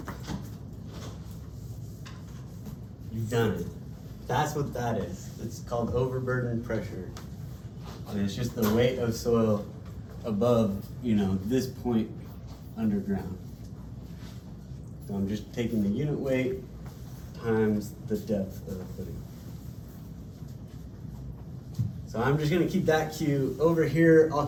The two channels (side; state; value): both; identical; correlation 1.00